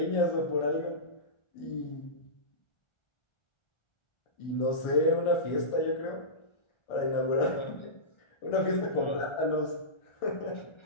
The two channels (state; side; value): late; right; 1.4 ms